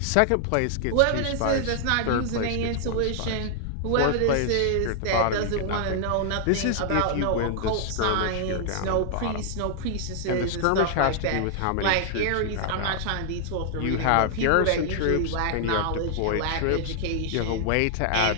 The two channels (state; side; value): different; both; correlation 0.00